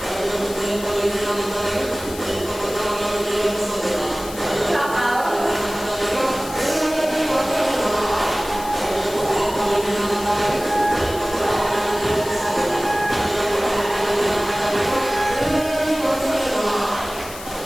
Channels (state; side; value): noise; left; hiss, 14 dB below the sound